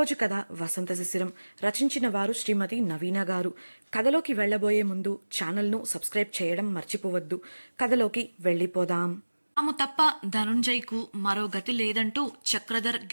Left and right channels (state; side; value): inverted; both; correlation -1.00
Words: కథ వసంత శిశిరం. రచించిన వారు శ్రీమతి నవీన గారు. కథలోకి వెళ్ళబోయే ముందు ఛానల్ను సబ్స్క్రైబ్ చేయడం మర్చిపోవద్దు. కథలోకి వెళ్ళిపోదాం. తాము తప్ప ధనుంజయ్కు మరో గతి లేదంటూ చక్రధర్